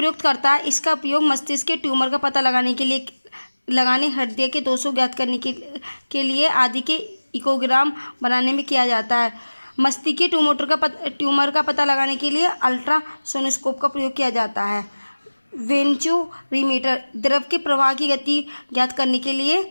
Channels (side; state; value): both; inverted; correlation -1.00